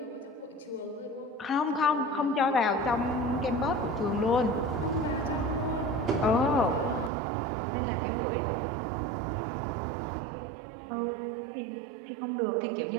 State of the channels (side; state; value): left; drops out; at 7.1 s